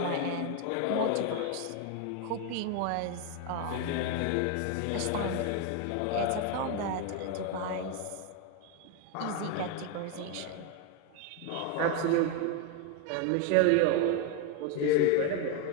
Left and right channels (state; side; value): different; both; correlation 0.01